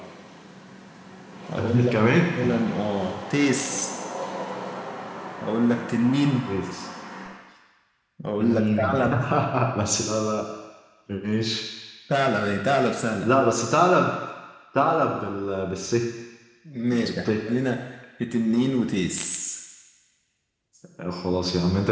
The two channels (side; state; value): both; identical; correlation 1.00